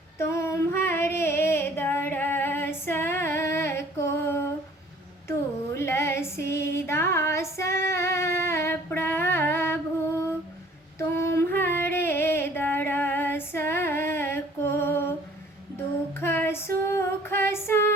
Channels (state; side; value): normal; both; correlation 0.53